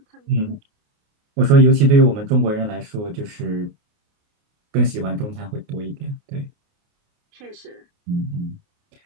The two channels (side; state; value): left; late; 28 ms